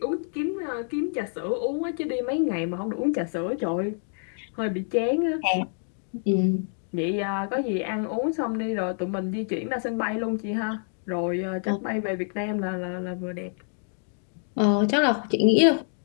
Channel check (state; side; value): silent; right; digital silence